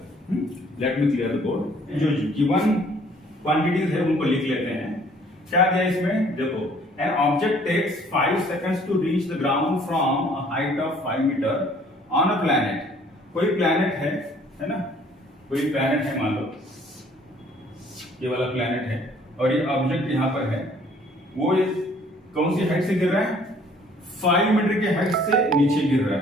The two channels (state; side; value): normal; both; correlation 0.58